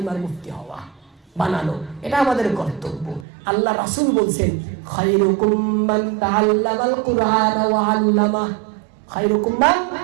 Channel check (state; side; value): drops out; left; at 3.2 s